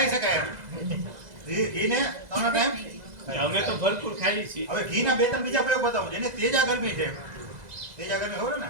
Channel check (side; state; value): left; late; 2.0 ms